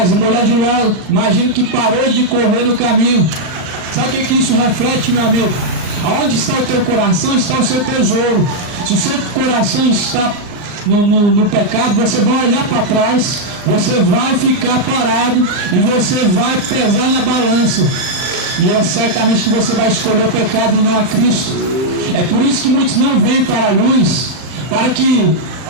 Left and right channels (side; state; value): left; late; 39 ms